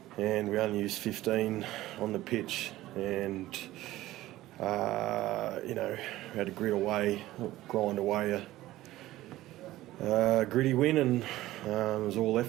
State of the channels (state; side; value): quieter; left; 16.0 dB